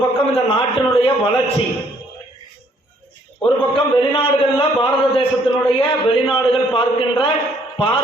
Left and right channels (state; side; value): normal; both; correlation 0.65